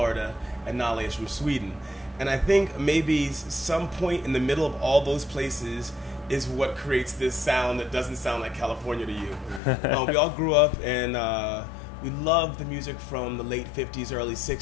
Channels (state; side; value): drops out; right; at 9.6 s